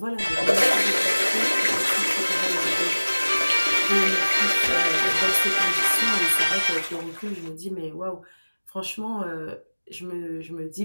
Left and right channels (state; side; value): inverted; both; correlation -1.00